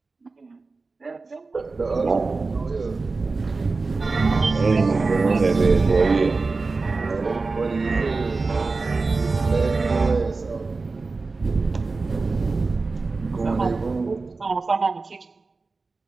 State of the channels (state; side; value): quieter; left; 3.9 dB